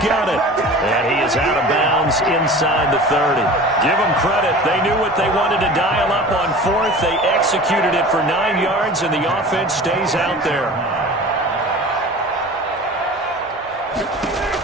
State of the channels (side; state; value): both; normal; correlation 0.38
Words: it. And he is out of bounds inside the 30. Give them credit. They knew what they wanted to dial up on 4th. They executed it for 9 yards, and the offense stays out there.